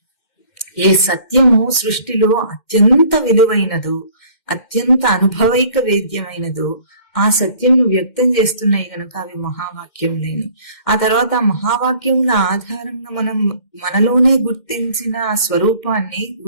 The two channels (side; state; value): right; late; 2.1 ms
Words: ఏ సత్యము సృష్టిలో అత్యంత విలువైనదో, అత్యంత అనుభవైక వేద్యమైనదో ఆ సత్యంను వ్యక్తం చేస్తున్నాయి కనుక అవి మహావాక్యములేని. ఆ తర్వాత ఆ మహావాక్యముల ఆధారంగా మనం మనలోనే గుర్తించిన ఆ స్వరూపాన్ని